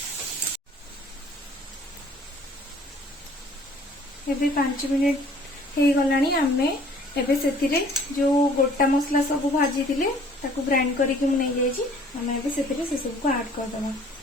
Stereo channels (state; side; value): normal; both; correlation 0.55